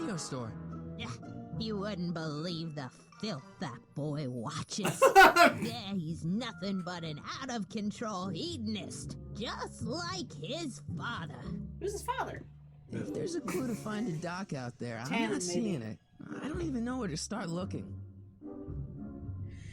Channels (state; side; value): identical; both; correlation 1.00